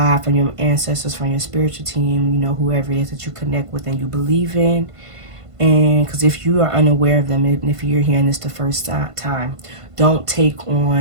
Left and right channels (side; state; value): left; late; 1.5 ms